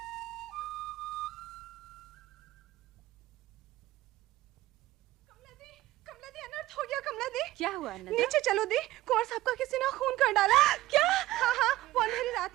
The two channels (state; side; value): quieter; left; 16.6 dB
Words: हो गया कमला दी। क्या हुआ नंदा? नीचे चलो दी, कुंवर साहब का किसी ने खून कर डाला। क्या? हाँ, वो अंधेरी